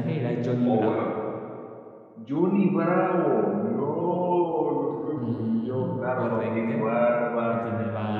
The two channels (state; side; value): identical; both; correlation 1.00